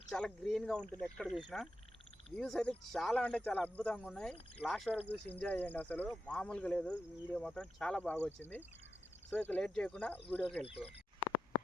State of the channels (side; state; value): both; normal; correlation 0.89